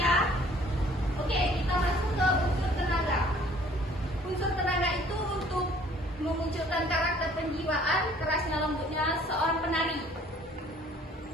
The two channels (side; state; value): both; normal; correlation 0.56